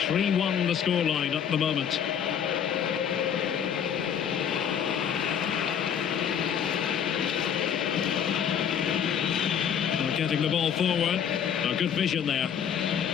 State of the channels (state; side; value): quieter; right; 8.4 dB